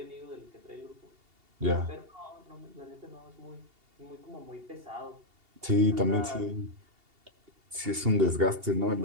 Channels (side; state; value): left; late; 2.8 ms